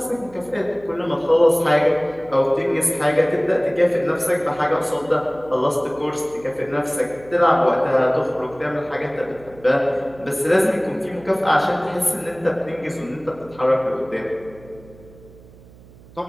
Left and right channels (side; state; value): right; noise; hum, 23 dB below the sound